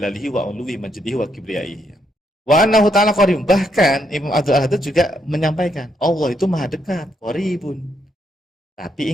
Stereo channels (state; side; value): normal; both; correlation 0.76